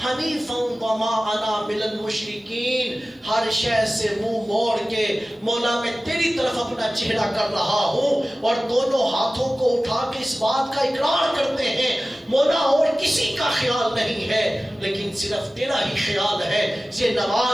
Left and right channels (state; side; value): normal; both; correlation 0.96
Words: حنیفا وما انا من المشرکین۔ ہر شے سے منہ موڑ کے مولا میں تیری طرف اپنا چہرہ کر رہا ہوں، اور دونوں ہاتھوں کو اٹھا کے اس بات کا اقرار کرتے ہیں مولا اور کسی کا خیال نہیں ہے لیکن صرف تیرا ہی خیال ہے۔ یہ